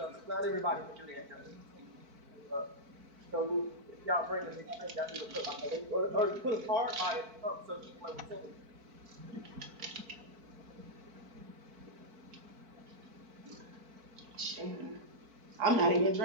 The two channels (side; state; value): left; late; 4.5 ms